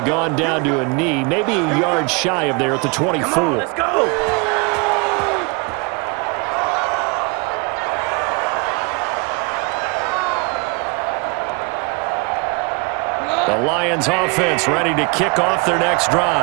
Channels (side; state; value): left; quieter; 31.0 dB